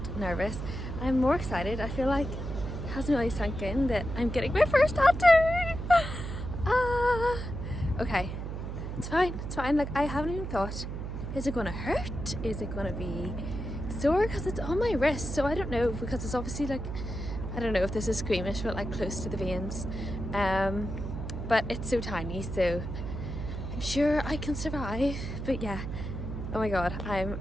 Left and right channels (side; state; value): right; noise; hum, 6 dB below the sound